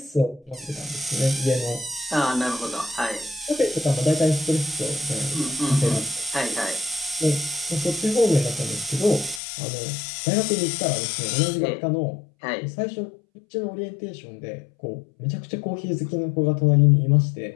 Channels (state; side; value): drops out; right; at 9.4 s